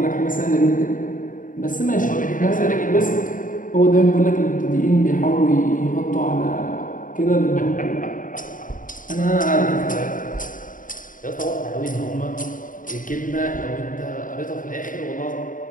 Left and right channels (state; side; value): late; right; 0.39 ms